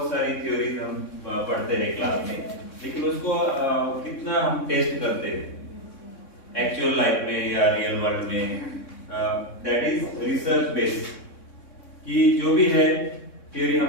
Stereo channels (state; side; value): late; right; 3.6 ms